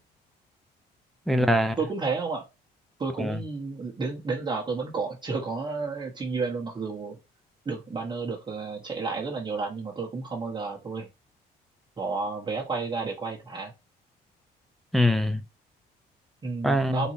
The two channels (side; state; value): both; normal; correlation 0.73